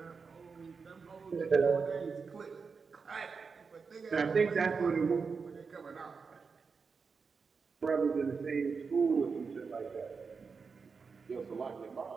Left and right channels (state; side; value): quieter; left; 5.2 dB